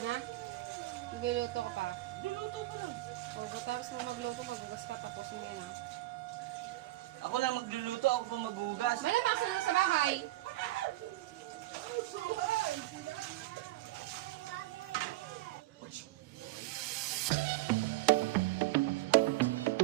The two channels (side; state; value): left; quieter; 17.3 dB